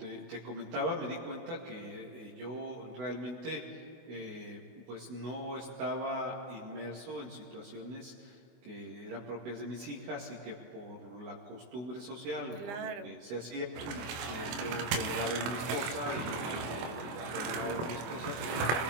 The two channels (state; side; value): late; left; 24 ms